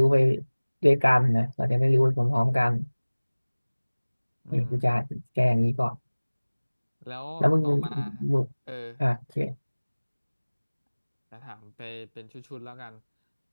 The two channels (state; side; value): inverted; both; correlation -1.00